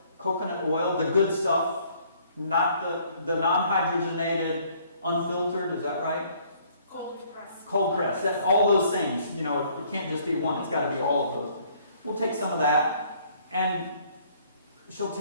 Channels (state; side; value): inverted; both; correlation -0.61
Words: coconut oil, the good stuff, not the non-hydrogenated, unfiltered, is that right? Cold press. That's all those things. It can't just be one, it's got to be all of those. We'll take some of that, and she'll